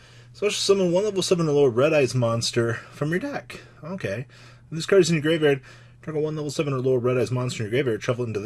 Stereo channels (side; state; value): both; identical; correlation 1.00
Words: special summon one level 7 or lower Red Eyes monster from your deck. Okay. If this card is in your graveyard, target one level 7 or lower Red Eyes monster in your graveyard, shuffle it into